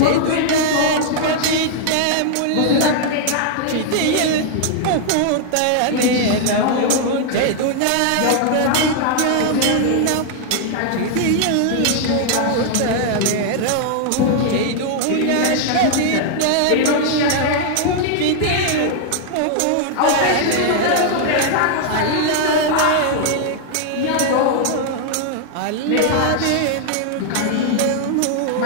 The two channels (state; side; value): different; both; correlation 0.00